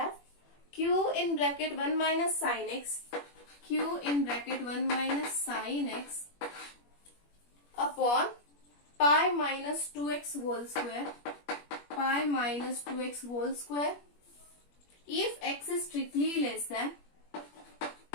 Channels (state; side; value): late; right; 21 ms